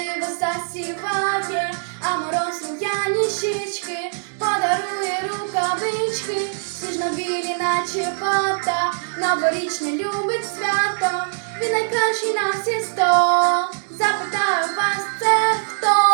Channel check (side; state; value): left; silent; digital silence